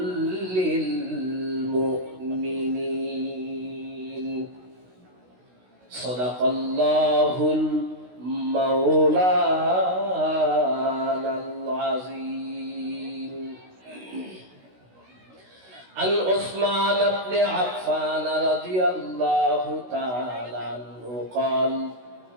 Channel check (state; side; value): late; left; 16 ms